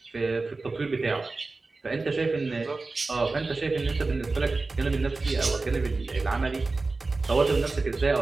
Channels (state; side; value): quieter; left; 3.6 dB